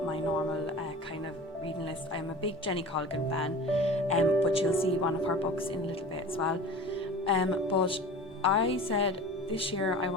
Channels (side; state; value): both; normal; correlation 0.37